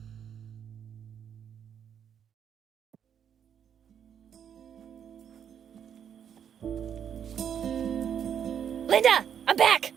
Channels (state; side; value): quieter; left; 8.5 dB